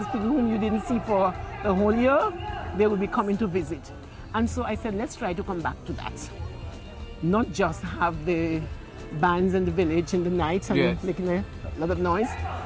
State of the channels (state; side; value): identical; both; correlation 1.00